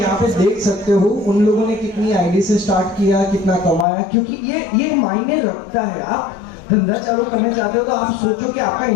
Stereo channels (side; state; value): right; drops out; at 3.9 s